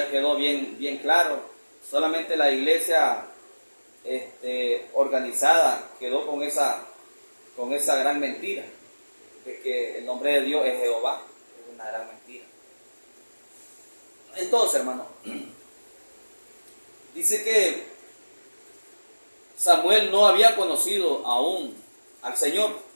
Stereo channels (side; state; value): both; inverted; correlation -1.00